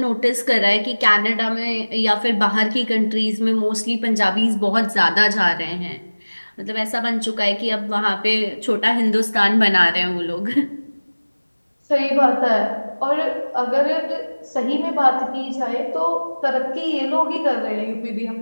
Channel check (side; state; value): both; inverted; correlation -1.00